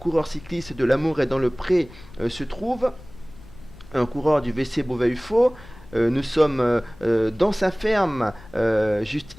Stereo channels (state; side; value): noise; left; rumble, 20 dB below the sound